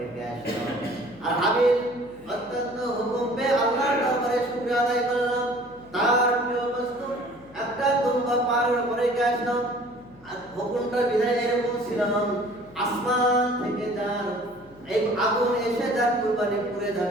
আসলাম। আর হাবিল অত্যন্ত হুকুম পেয়ে আল্লাহর দরবারে শুকরিয়া আদায় করলাম, তার প্রিয় বস্তু একটা দুম্বা পাহাড়ের উপরে রেখে আসলাম। আর হুকুমটা বিধায় এরকম ছিল, আসমান থেকে যার এই আগুন এসে যার কুরবানি পুড়ে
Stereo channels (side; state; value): left; noise; hum, 26 dB below the sound